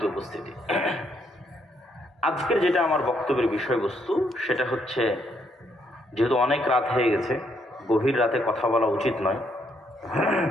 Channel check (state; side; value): normal; both; correlation 0.73